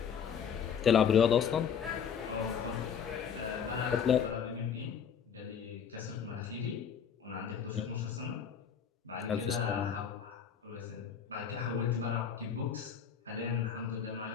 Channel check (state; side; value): quieter; right; 7.5 dB